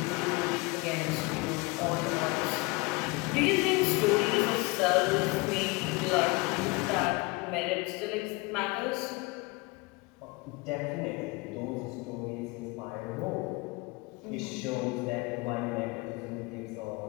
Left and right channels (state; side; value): quieter; right; 25.4 dB